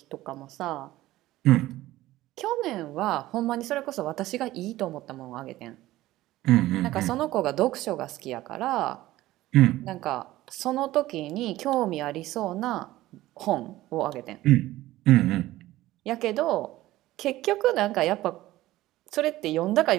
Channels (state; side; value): quieter; left; 16.3 dB